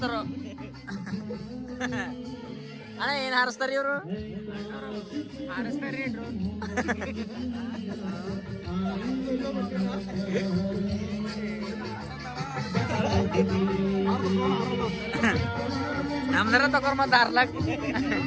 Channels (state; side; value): identical; both; correlation 1.00